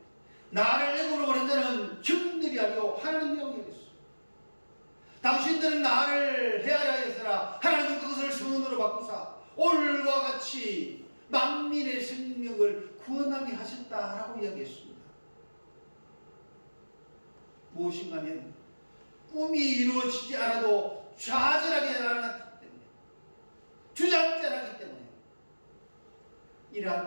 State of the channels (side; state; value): both; inverted; correlation -1.00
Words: 나를 애굽으로 보낸 자는 형들이 아니고 하나님이라고 얘기했어요. 당신들은 나를 헤아려 했으나 하나님은 그것을 선으로 바꾸사 올과 같이 만민의 생명을 구원하게 하셨다라고 이야기했습니다. 무엇인가 하면 꿈이 이루어지지 않아도 좌절하게 않았기 때문에, 주저앉지 않았기 때문에